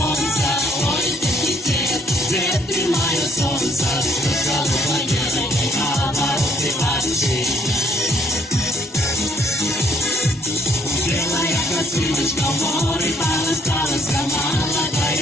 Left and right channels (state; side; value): normal; both; correlation 0.66